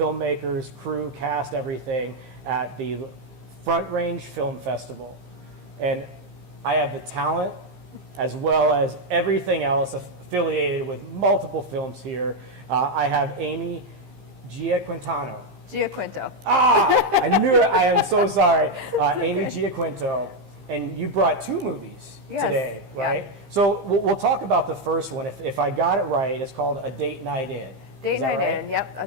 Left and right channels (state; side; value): late; left; 15 ms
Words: crew, cast, everything, at the Front Range Film Festival. And I have the talent as well as everything else affiliated with multiple films here. I have Amy Giaquinto. I knew it. I am so sorry. Amy Giaquinto. And you brought two movies today, right? Yeah. So we'll talk about the first one. If I got it right, it's called A Date Night In. Date Night In, yep,